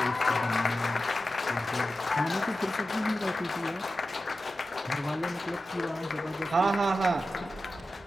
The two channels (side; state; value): both; normal; correlation 0.93